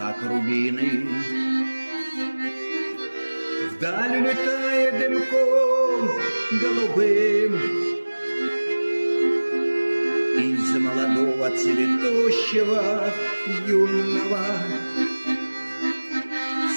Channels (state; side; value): inverted; both; correlation -1.00